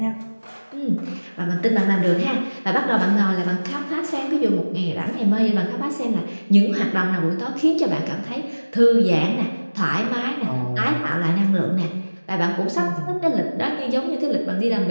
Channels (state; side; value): inverted; both; correlation -1.00